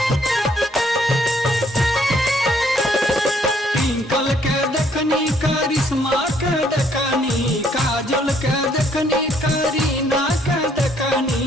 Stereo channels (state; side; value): normal; both; correlation 0.66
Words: करिश्मा के देखनी काजल के देखनी करीना के